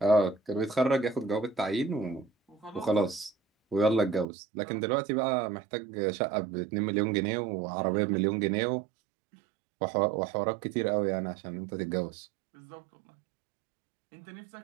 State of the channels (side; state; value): left; drops out; at 4.2 s